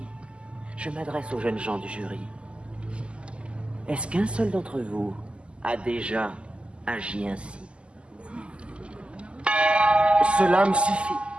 Je m'adresse aux jeunes gens du jury. Est-ce qu'un seul d'entre vous a déjà agi ainsi? Cela me suffit.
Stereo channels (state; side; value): late; left; 0.053 ms